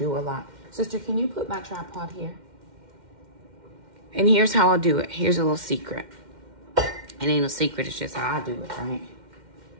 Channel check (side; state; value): left; late; 2.1 ms